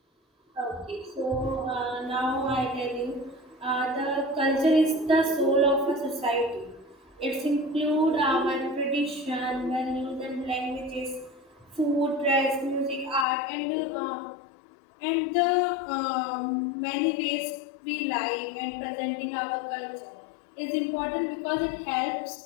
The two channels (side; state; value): right; drops out; at 13.2 s